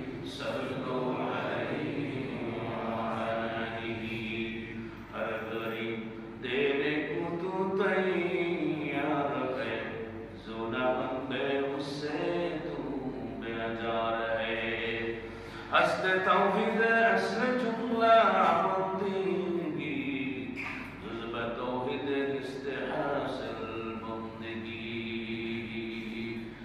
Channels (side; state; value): both; identical; correlation 1.00